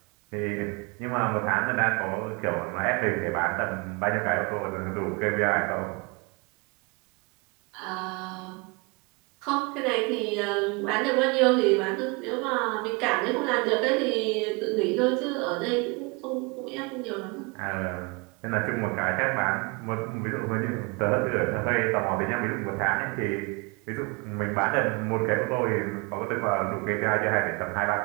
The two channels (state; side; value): quieter; left; 29.4 dB